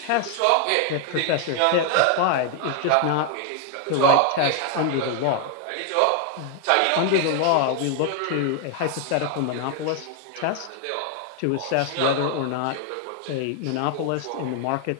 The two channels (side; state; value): both; different; correlation 0.00